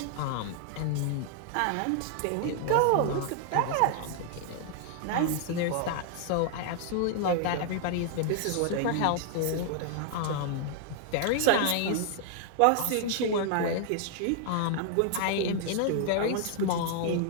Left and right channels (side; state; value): both; different; correlation 0.00